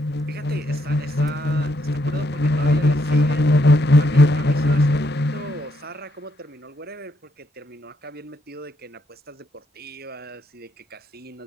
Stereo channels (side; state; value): both; normal; correlation 0.76